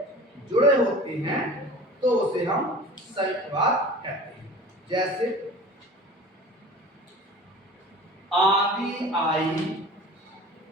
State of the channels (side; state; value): both; normal; correlation 0.40